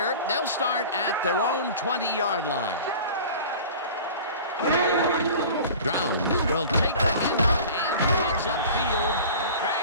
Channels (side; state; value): both; inverted; correlation -0.40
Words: They'll start at their own 20-yard line. Browns will take the handoff and heads upfield,